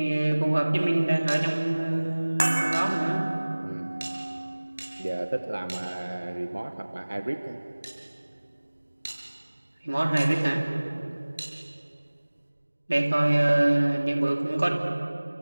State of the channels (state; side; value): inverted; both; correlation -1.00